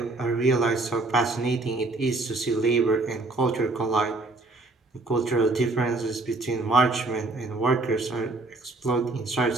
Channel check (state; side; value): quieter; left; 3.1 dB